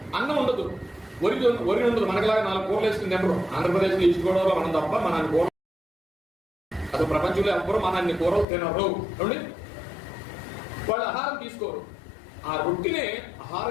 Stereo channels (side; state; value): right; drops out; at 8.5 s